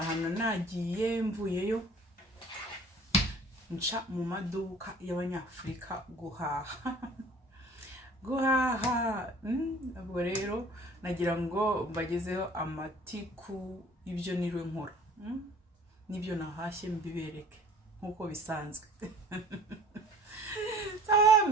nagiye mvuyeyo nca mu maduka y'abanyafurika guhaha. Ubwo rero nagira ngo mbagezeho amatiku ibyo niriwe nkora, nibyo nahashye mbibereke nkuko bisanzwe.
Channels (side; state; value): both; normal; correlation 0.49